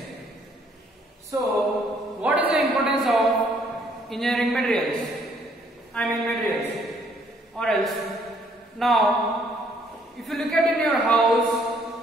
So, what is the importance of engineering materials? Materials. Or else, now, if you look at in your house,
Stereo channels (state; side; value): normal; both; correlation 0.65